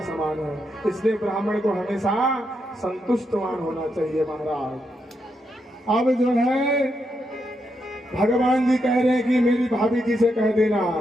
समान है। इसलिए ब्राह्मण को हमेशा संतुष्टवान होना चाहिए महाराज। अब जो है भगवान जी कह रहे हैं कि मेरी भाभी जी से कह देना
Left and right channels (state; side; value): normal; both; correlation 0.82